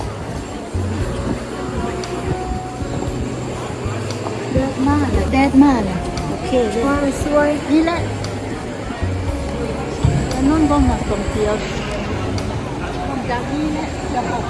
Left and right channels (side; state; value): both; identical; correlation 1.00